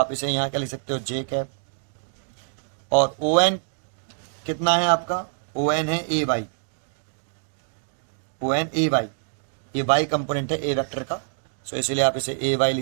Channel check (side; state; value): left; silent; digital silence